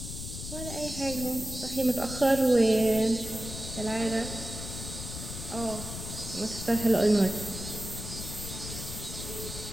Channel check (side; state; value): left; noise; rumble, 8 dB below the sound